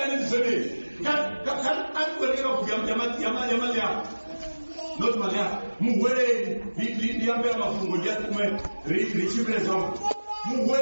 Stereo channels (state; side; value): inverted; both; correlation -1.00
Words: zone kan atweleka kugamba not malia muwele liambia mafungo ya kumwe richibrezo